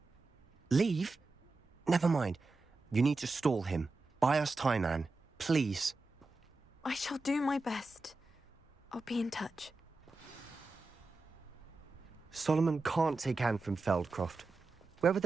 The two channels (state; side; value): quieter; left; 3.4 dB